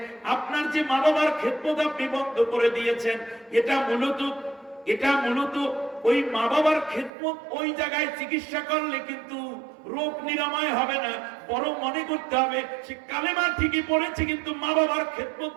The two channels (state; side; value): drops out; left; at 7.1 s